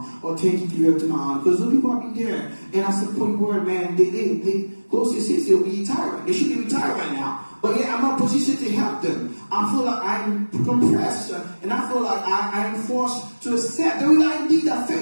or 10K give it to my aunt, because those people are be there. And I said, point word, man, they close to 60, they'll be retired. They should be retired right now. But yet I'm not positioned to help them. I feel like I'm compressed, and I feel like I am forced to accept the reality that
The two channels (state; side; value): inverted; both; correlation -1.00